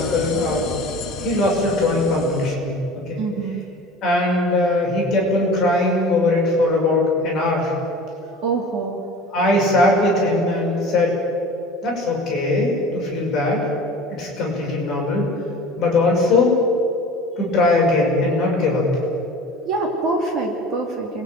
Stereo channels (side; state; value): both; normal; correlation 0.40